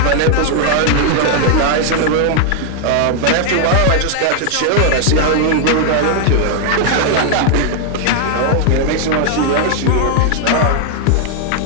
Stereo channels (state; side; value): different; both; correlation 0.00